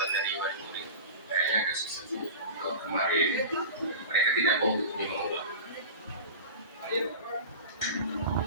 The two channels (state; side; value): inverted; both; correlation -0.31